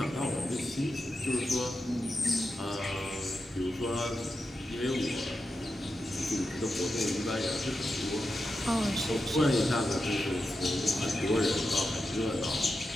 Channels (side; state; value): both; normal; correlation 0.89